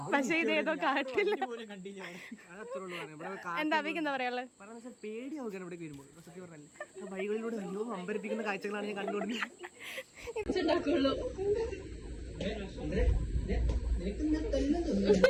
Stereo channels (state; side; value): identical; both; correlation 1.00